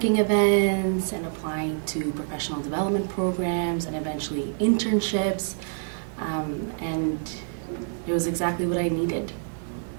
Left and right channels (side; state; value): left; silent; 58 dB below the other